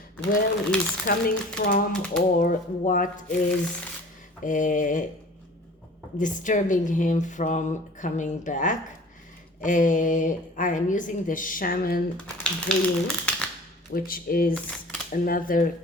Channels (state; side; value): normal; both; correlation 0.45